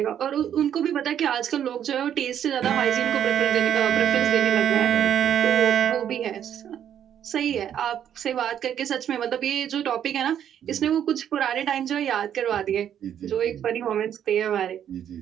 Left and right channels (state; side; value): quieter; left; 9.7 dB